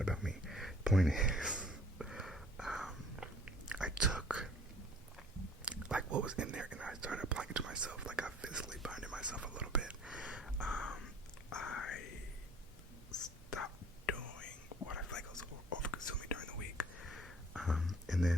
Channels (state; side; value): normal; both; correlation 0.53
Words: about me. Point is, I took like what was in there and I started applying it to myself. Like I physically binded myself a little bit. I stopped doing what I feel like I was over-consuming during the week. And